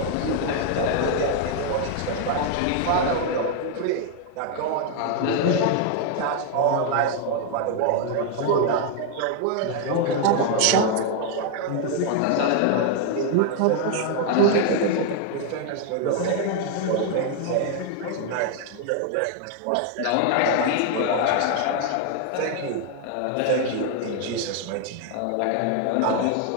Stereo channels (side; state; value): both; different; correlation 0.00